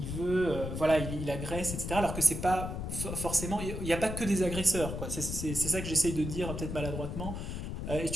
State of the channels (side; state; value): left; noise; rumble, 5 dB below the sound